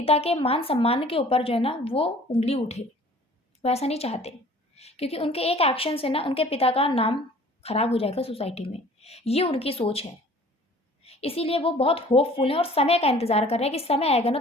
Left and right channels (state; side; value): normal; both; correlation 0.50